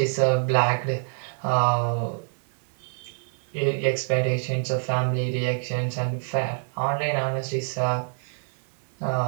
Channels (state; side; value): silent; left; 61 dB below the other